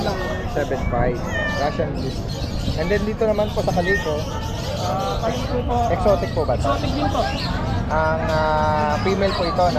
lang po. 7.5. Russian Blue. And then dito naman po sa kaliko, Palito po. exotic po ba ito? Exotic din po. Ang female po ito,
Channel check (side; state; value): both; identical; correlation 1.00